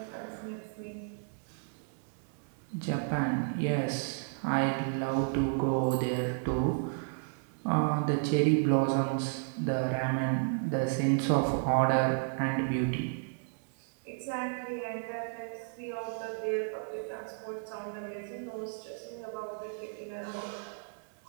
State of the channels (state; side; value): silent; left; digital silence